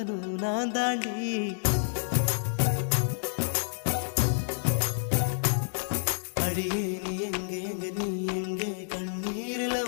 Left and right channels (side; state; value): right; silent; digital silence